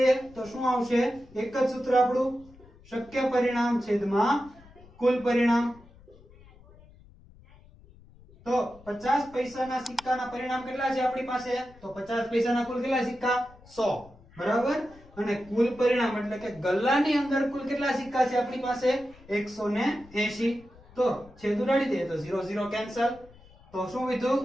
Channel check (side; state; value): left; noise; rumble, 24 dB below the sound